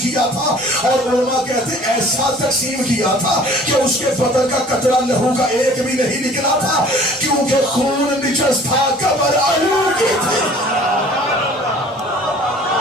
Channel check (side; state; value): both; normal; correlation 0.50